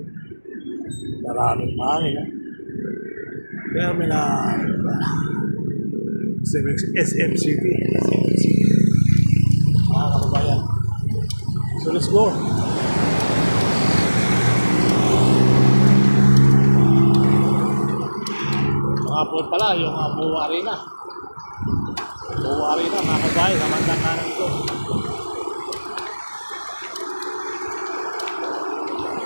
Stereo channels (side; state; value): both; inverted; correlation -1.00